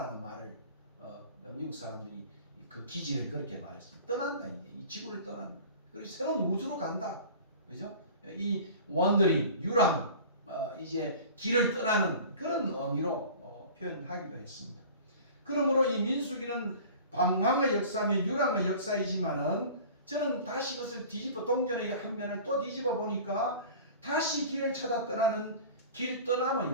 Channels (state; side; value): inverted; both; correlation -0.41